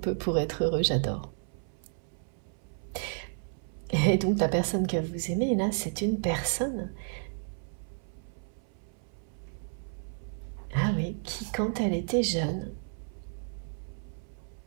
pour être heureux, j'adore. Et donc la personne que vous aimez, là, c'est une personne, ah oui, qui quand elle était jeune,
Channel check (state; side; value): silent; left; 56 dB below the other